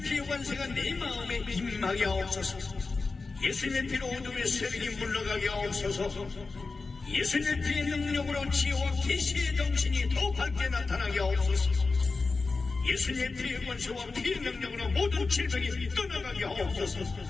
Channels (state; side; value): quieter; right; 4.0 dB